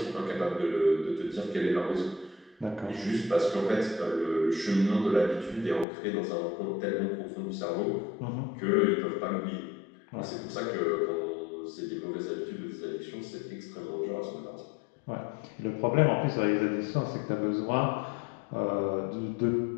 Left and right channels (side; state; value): right; drops out; at 5.9 s